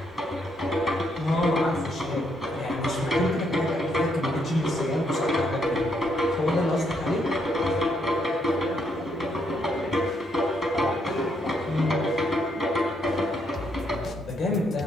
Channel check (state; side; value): normal; both; correlation 0.75